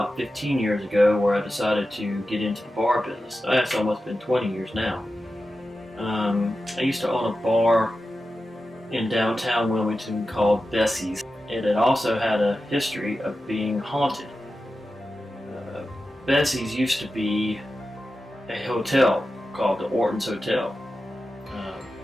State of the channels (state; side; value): normal; both; correlation 0.92